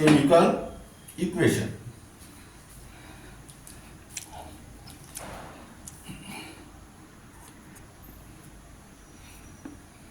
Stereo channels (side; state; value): both; identical; correlation 1.00